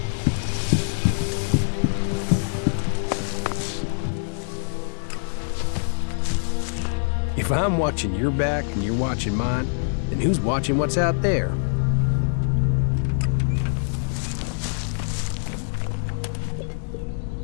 If I'm watching your back and you're watching mine, then who's watching what's out there?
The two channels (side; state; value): right; silent; digital silence